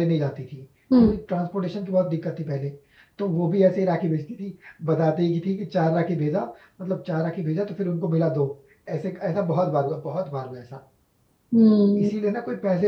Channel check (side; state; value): both; identical; correlation 1.00